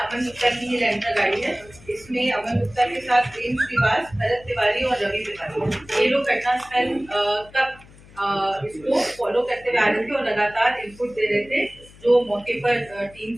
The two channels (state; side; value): noise; left; hum, 23 dB below the sound